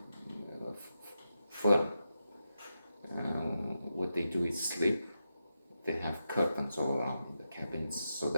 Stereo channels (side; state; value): both; inverted; correlation -0.88